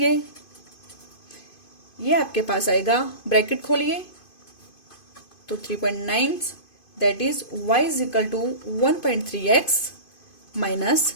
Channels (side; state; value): right; late; 2.5 ms